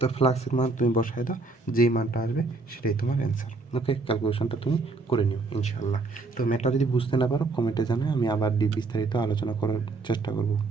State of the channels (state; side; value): quieter; left; 3.5 dB